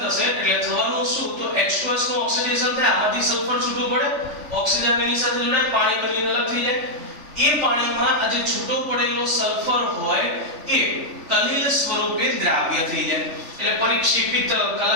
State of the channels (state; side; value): late; left; 3.4 ms